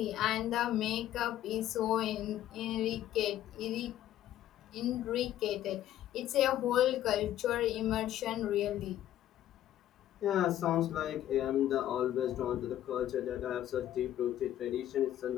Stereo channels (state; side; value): quieter; right; 12.5 dB